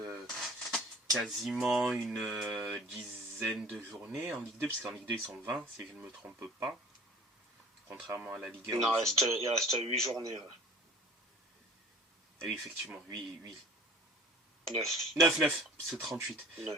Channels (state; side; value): normal; both; correlation 0.47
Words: quasiment une dizaine de journées en Ligue 2, puisqu'en Ligue 2 ils sont 20, si je ne me trompe pas. Contrairement à la Ligue 1. Non, il reste 8 journées. Ouais. Oui, effectivement, 8. 9. C'est 38.